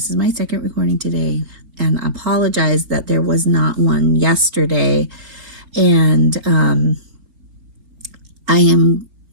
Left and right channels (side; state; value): left; late; 4.0 ms